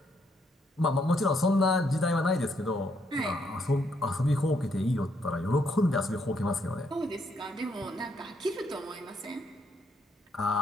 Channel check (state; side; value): normal; both; correlation 0.74